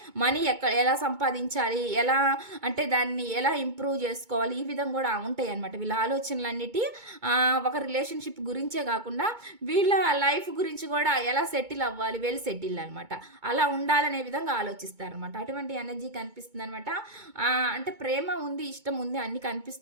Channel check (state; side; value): late; left; 2.2 ms